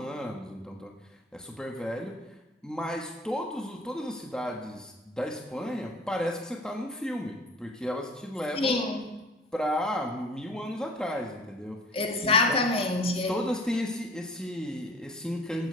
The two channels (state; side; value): normal; both; correlation 0.48